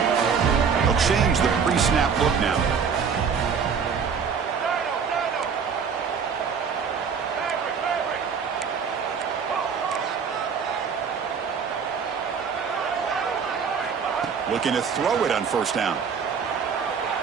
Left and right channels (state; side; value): quieter; left; 6.3 dB